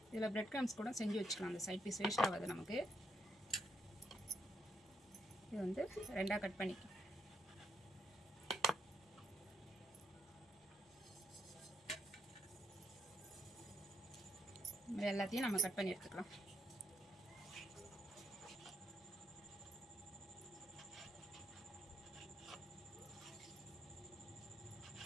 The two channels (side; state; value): both; normal; correlation 0.77